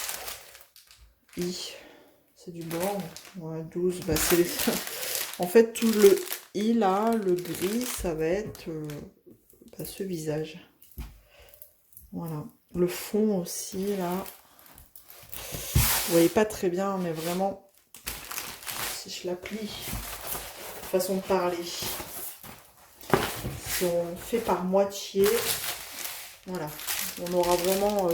C'est du blanc. Ouais, 12, bah c'est les... En fait, tout le i là, le gris, ça va être ce visage. Voilà. Le fond aussi, là. Vous voyez pas très bien, mais vraiment, si je la plie, façon de parler, si on fait par moitié, voilà. On aura vraiment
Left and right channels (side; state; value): both; identical; correlation 1.00